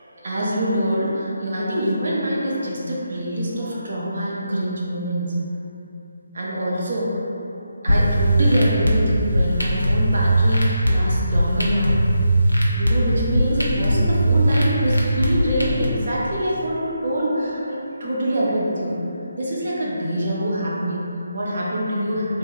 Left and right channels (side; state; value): both; inverted; correlation -0.84